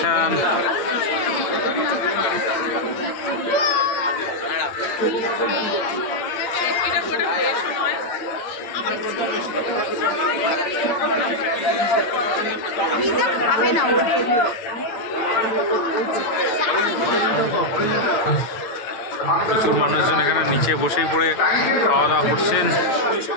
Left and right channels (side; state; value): right; late; 8.9 ms